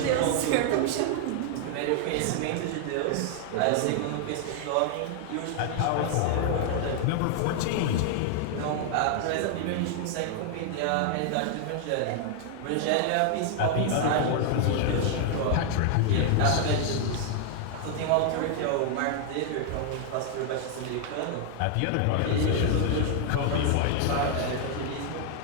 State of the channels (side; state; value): both; different; correlation 0.00